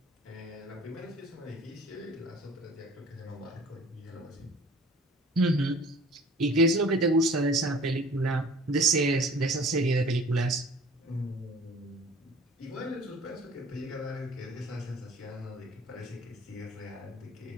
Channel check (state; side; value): normal; both; correlation 0.48